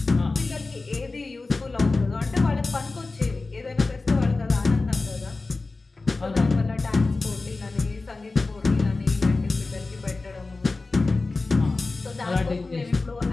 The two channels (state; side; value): quieter; right; 3.6 dB